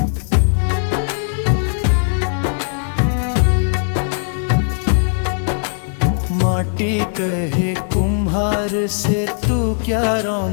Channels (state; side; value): silent; right; digital silence